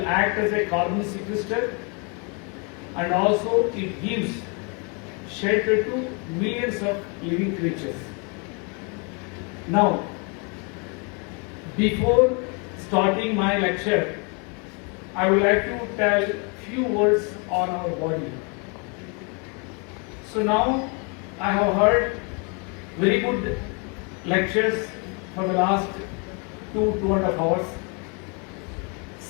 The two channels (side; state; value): right; quieter; 34.6 dB